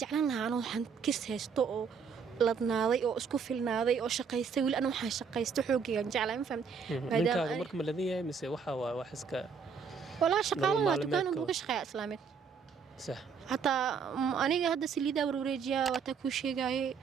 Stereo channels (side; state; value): left; quieter; 6.0 dB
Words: jeclaan lahaa anoo waxaan kis haysto oo ladnaaday oo isku filnaaday oo shaqaystay wili ana waxaan shaqaysto xoogayaan jeclaa ma fahamtay ninkaaga marka ma ladan yahay mise waxa waa wax iska walaa shaqaalaha dukaan uga shaqeeya islaameed صح حتى أنا هذا سليدا وروريجيا وتكوشي جاي